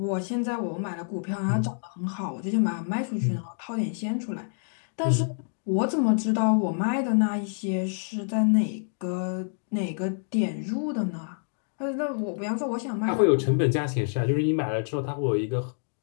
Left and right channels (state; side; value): silent; right; digital silence